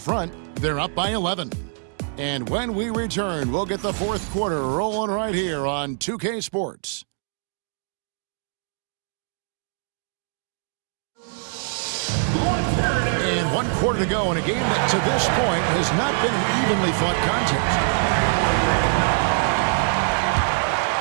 They're up by 11. And when we return, we'll get the fourth quarter rolling right here on 2K Sports. And 1 quarter to go in a game that to this point has not been an evenly fought contest.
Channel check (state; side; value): silent; left; 63 dB below the other